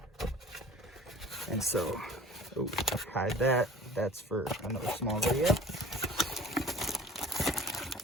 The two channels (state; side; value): normal; both; correlation 0.44